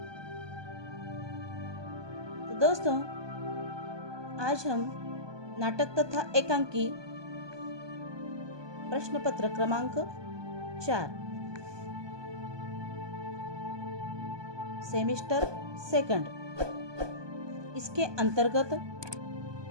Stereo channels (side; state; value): left; late; 1.2 ms